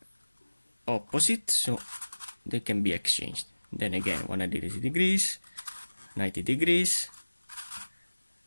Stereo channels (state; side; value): inverted; both; correlation -1.00